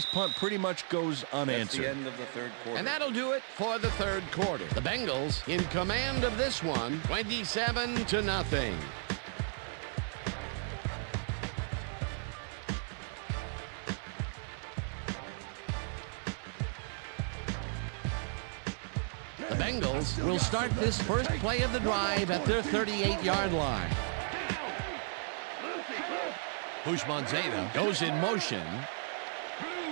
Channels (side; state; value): left; silent; 55 dB below the other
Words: punt pretty much goes unanswered. That's the end of the third quarter. And that'll do it for the 3rd quarter. The Bengals in command of this one, 27-0. The Bengals will start this first play of the drive at their 38-yard line. Houshmandzadeh goes in motion.